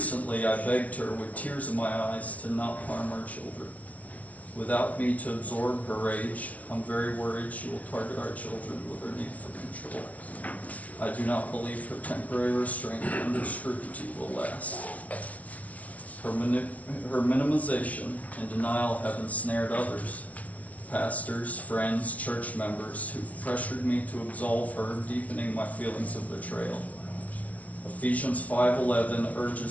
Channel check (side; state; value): right; late; 0.068 ms